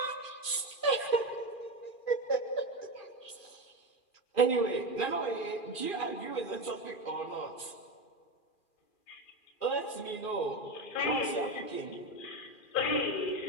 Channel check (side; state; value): right; late; 2.4 ms